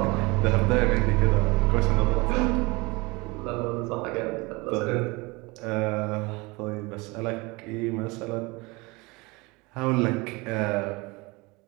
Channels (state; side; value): quieter; left; 25.2 dB